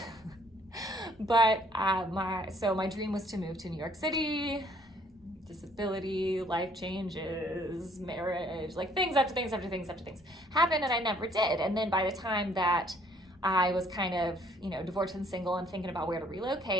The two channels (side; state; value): both; normal; correlation 0.62